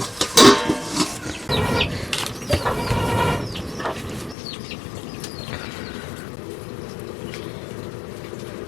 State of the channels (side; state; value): right; drops out; at 4.4 s